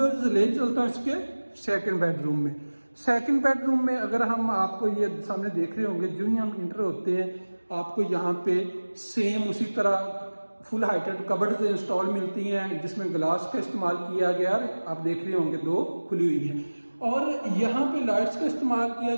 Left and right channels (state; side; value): inverted; both; correlation -1.00